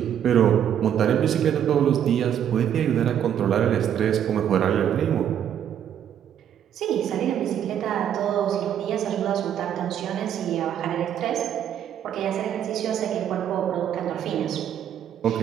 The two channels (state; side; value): quieter; left; 9.6 dB